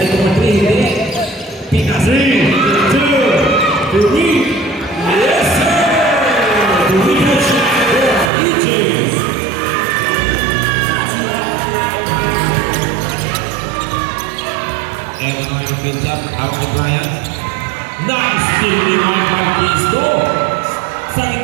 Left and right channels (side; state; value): left; drops out; at 8.3 s